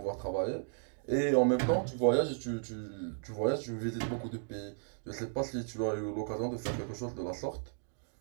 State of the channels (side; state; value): left; silent; digital silence